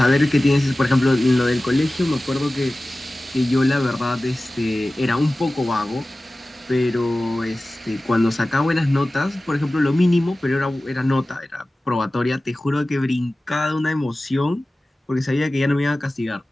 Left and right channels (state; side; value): normal; both; correlation 0.97